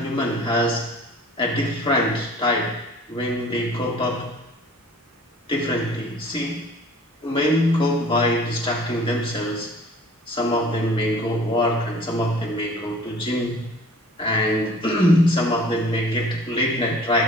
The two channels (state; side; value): normal; both; correlation 0.49